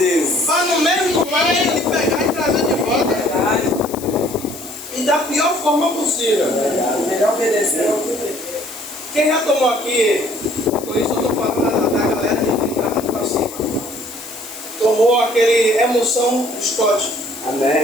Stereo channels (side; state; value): left; noise; hiss, 14 dB below the sound